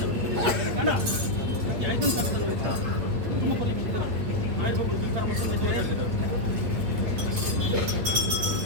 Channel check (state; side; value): late; left; 8.7 ms